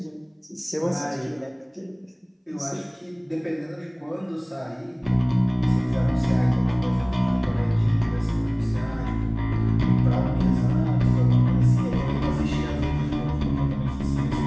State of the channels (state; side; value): identical; both; correlation 1.00